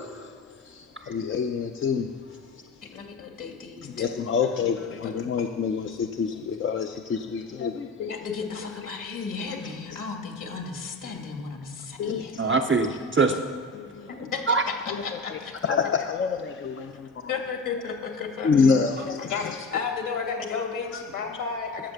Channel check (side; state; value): right; quieter; 3.0 dB